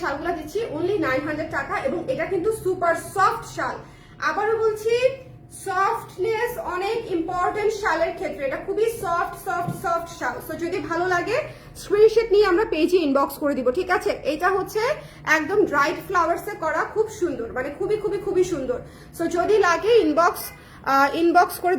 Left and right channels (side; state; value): both; identical; correlation 1.00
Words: শালগুলা দিচ্ছি অনলি 900 টাকা, এবং এটা কিন্তু সুপার সফট শাল। আবারও বলছি, সফটনেস অনেক ইম্পর্টেন্ট শালের ক্ষেত্রে, এটা খুবই সফট শাল। সো যদি ভালো লাগে স্ক্রিনশট নিয়ে আমরা পেজে ইনবক্স করে দিব। ঠিক আছে, এটা হচ্ছে একদম ড্রাইড ফ্লাওয়ার্সে করা, খুব সুন্দর, মানে খুবই সুন্দর। সো যদি লাগে ইনবক্স করে